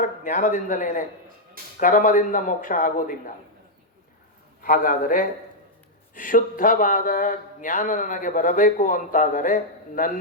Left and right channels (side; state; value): both; normal; correlation -0.03